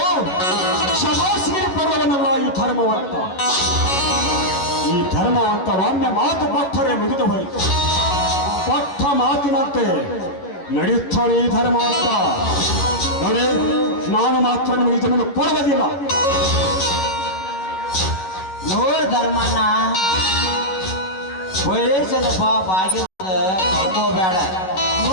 ಶಬಾಸಿಗೆ ಪಡುವವನಲ್ಲ ಈ ಧರ್ಮವಂತ. ಈ ಧರ್ಮವಂತ ಒಮ್ಮೆ ಮಾತು ಕೊಟ್ಟರೆ ಮುಗಿದು ಹೋಯಿತು. ಕೊಟ್ಟ ಮಾತಿನಂತೆ ನಡೆಯುತ್ತಾನೆ ಈ ಧರ್ಮವಂತ. ನೋಡಿ, ನಾನು ಮಾತ್ರ ನಿಮಗೆ ಜಮೀನು ಕೊಡುವುದಿಲ್ಲ. ನೋಡ್ ಧರ್ಮಣ್ಣ, ವಯಸ್ಸದ ಬಾಗಿಲ ಕಳ್ಕೋಬೇಡ.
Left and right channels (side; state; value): right; late; 11 ms